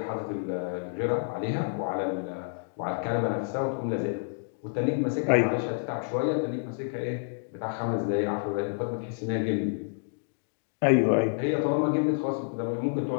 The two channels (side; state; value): right; silent; digital silence